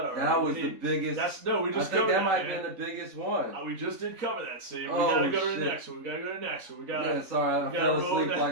already. That was the biggest. We just I think that might man. have been the biggest one. We just did cover that. See, we Oh, gotta go to shit. the next one. We gotta go to the next one. Yeah, sorry, I fell asleep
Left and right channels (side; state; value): left; late; 4.0 ms